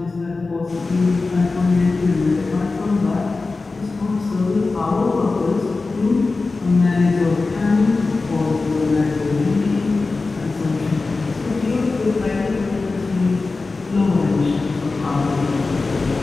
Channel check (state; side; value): quieter; right; 3.8 dB